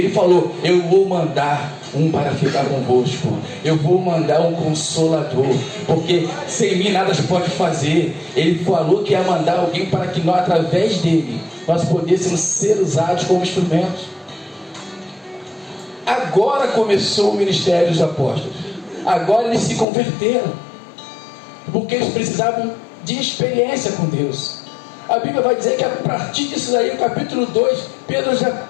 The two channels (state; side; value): drops out; right; at 19.9 s